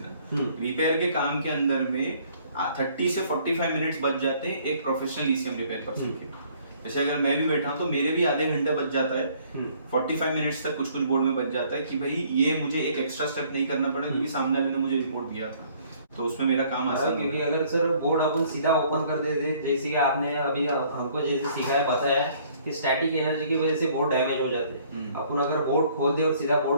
रिपेयर के काम के अंदर में 30 से 45 मिनट्स बच जाते हैं एक प्रोफेशनल ईसीएम रिपेयर पर्सन के। जैसे अगर मैं भी बैठा हूं तो मेरे भी आधे घंटे बच जाता है, 45 मिनट्स तक कुछ बोर्ड में बच जाता है कि भाई ये मुझे एक एक्स्ट्रा स्टेप नहीं करना पड़ा, क्योंकि सामने वाले ने मुझे रिपोर्ट दिया था, तो उसमें मेरा काम आसान है। क्योंकि अगर सर बोर्ड अपन सीधा ओपन कर देते, जैसे कि आपने अभी हमको जैसे सिखाया बताया कि स्टैटिक एनर्जी की वजह से बोर्ड डैमेज हो जाते हैं। अपन अगर बोर्ड खोल दे और सीधा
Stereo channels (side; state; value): both; inverted; correlation -0.60